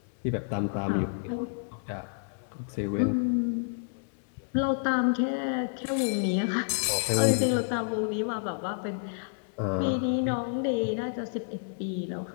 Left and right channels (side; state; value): right; silent; digital silence